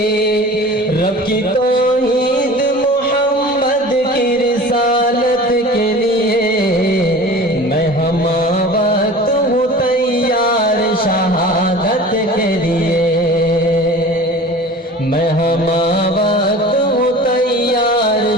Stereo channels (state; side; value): normal; both; correlation 0.40